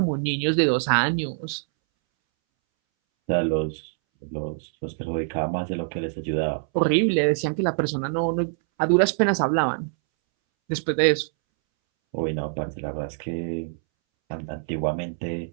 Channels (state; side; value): silent; left; 62 dB below the other